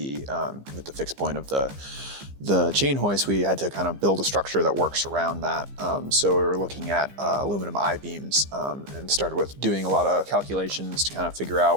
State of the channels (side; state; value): left; late; 15 ms